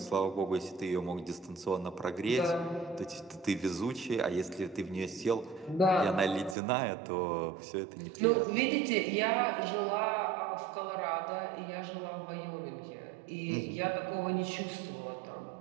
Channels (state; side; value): drops out; left; at 6.6 s